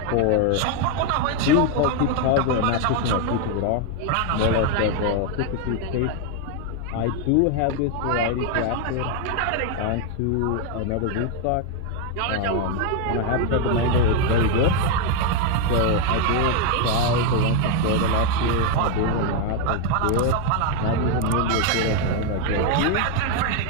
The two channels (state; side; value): different; both; correlation 0.01